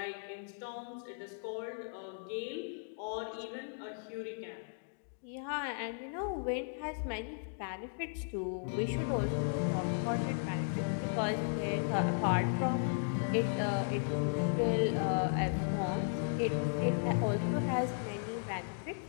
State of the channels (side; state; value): right; silent; digital silence